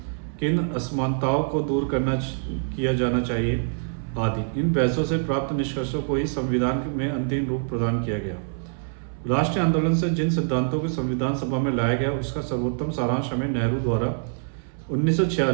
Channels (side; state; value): left; silent; 62 dB below the other